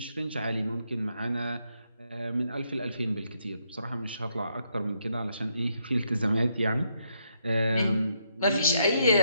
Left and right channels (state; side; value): inverted; both; correlation -0.76